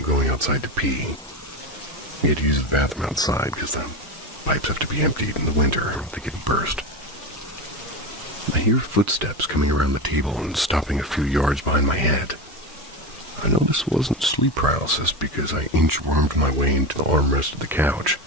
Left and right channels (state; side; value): normal; both; correlation 0.21